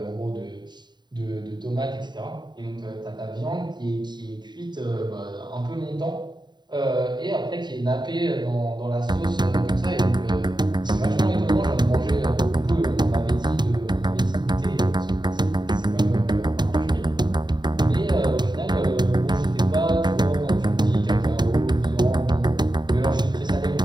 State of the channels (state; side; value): late; left; 0.21 ms